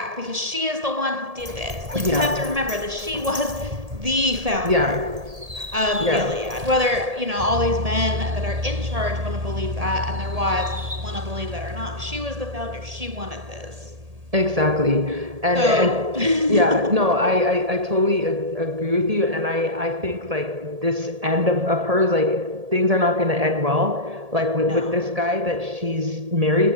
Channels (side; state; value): left; late; 1.7 ms